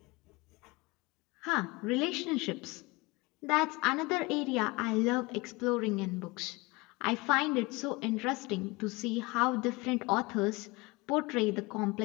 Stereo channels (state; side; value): quieter; right; 24.2 dB